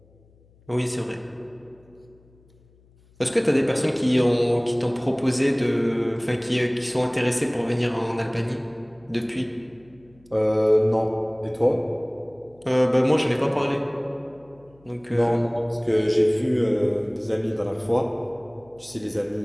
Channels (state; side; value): noise; left; hum, 30 dB below the sound